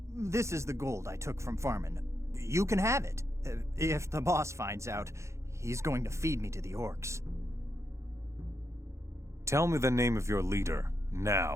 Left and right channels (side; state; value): left; late; 0.14 ms